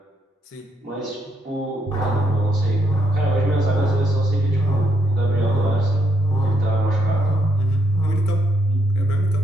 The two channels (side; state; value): both; normal; correlation 0.76